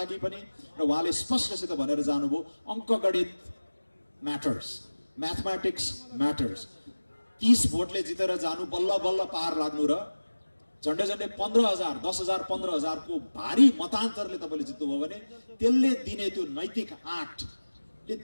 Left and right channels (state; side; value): inverted; both; correlation -1.00